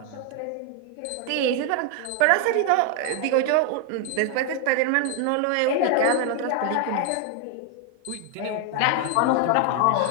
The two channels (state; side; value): different; both; correlation 0.00